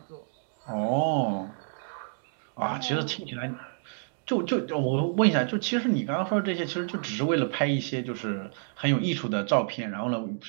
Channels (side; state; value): left; silent; digital silence